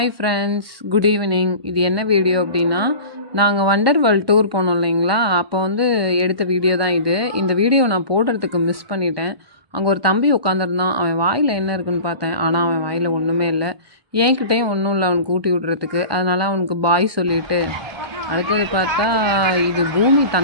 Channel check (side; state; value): left; late; 1.2 ms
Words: friends, good evening. இது என்ன video அப்படின்னா, நாங்கள் வண்டர் வேர்ல்ட் டூர் போனோம் இல்லைங்களா, அப்போ வந்து எடுத்த வீடியோ தான் இது. இந்த வீடியோ நான் போடுறதுக்கு மிஸ் பண்ணிட்டேன். அங்கே ஒரு தம்பி உட்காந்துருந்தான். அவன் வாயில் என்ன இருக்குன்னு பார்த்தேன், ஆனால் அவன் வாயில் ஒன்றுமே இல்லை. என்கிட்டையும் ஒன்றும் இல்லை அவனுக்கு ஊட்டி விடுறதுக்கு. அதனால் அவனுக்கு பாய் சொல்லிவிட்டு, அடுத்தது பார்த்தா இது பூமி